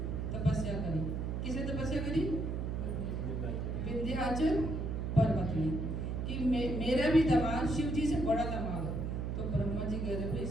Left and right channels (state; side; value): noise; right; hum, 2 dB below the sound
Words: तपस्या करी। किसे तपस्या करी, विंध्याचल पर्वत में, कि मेरा भी दामाद शिव जी से बड़ा दामाद हो। तो ब्रह्मा जी कह रहे भाई